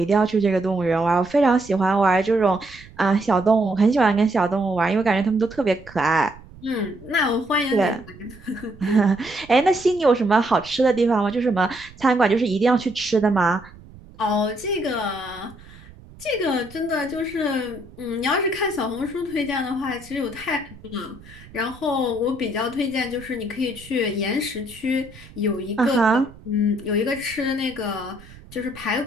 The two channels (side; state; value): right; noise; rumble, 21 dB below the sound